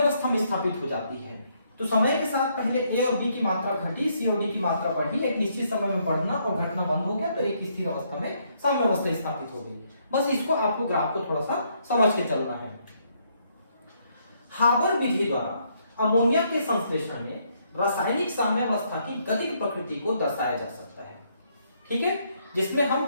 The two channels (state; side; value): inverted; both; correlation -0.72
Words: में स्थापित हो जाती है। तो समय के साथ पहले ए और बी की मात्रा घटी, सी और डी की मात्रा बढ़ी, एक निश्चित समय में बढ़ना और घटना बंद हो गया, तो एक स्थिर अवस्था में साम्यावस्था स्थापित हो गई। बस इसको आपको ग्राफ को थोड़ा सा समझ के चलना है। हाबर विधि द्वारा अमोनिया के संश्लेषण में रासायनिक साम्यावस्था की गतिक प्रकृति को दर्शाया जा सकता है। ठीक है, जिसमें हम